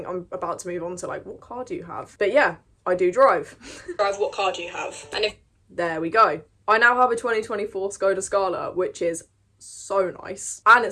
I'm about to move on to like, what car do you have? But yeah, I do drive. Drive, what car do you have? And if... There we go. I now have a 2024 Skoda Scala, which is so nice. And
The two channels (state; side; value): identical; both; correlation 1.00